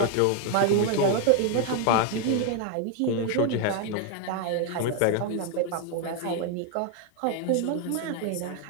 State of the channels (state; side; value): different; both; correlation 0.01